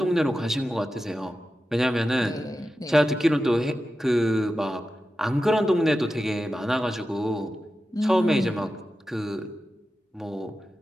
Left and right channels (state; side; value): normal; both; correlation 0.92